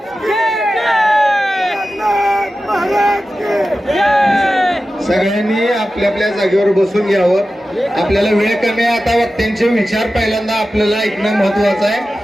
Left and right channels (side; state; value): both; normal; correlation 0.94